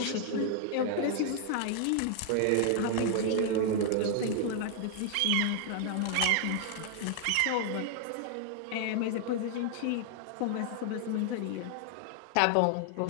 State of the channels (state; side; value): different; both; correlation 0.00